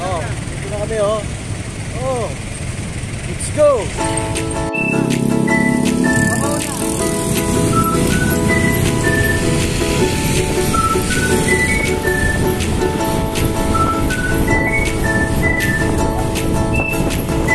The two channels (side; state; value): both; identical; correlation 1.00